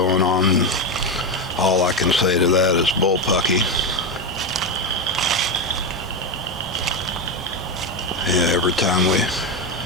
on. All I can say to that is bullpucky. Yeah, every time we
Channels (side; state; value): both; normal; correlation 0.11